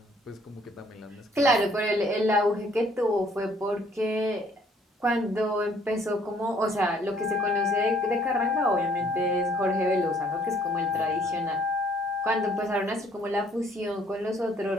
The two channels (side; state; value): both; normal; correlation 0.62